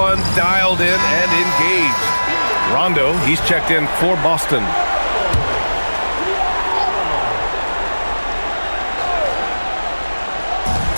dialed in and engaged. Rondo, he's checked in for Boston.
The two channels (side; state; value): both; inverted; correlation -1.00